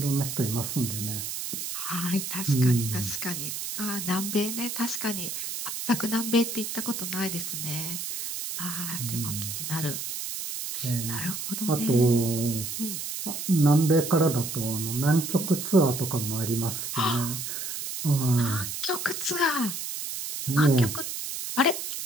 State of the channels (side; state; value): right; noise; hiss, 5 dB below the sound